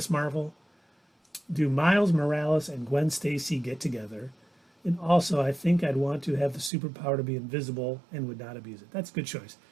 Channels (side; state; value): left; drops out; at 6.7 s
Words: Marvel. Do Miles Morales and Gwen Stacy get together? And also, I think I'd want to have the superpower to be invisible and would not abuse it. That's a good choice.